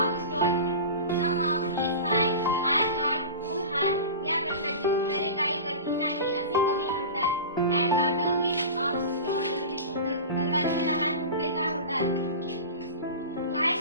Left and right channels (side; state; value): both; inverted; correlation -0.31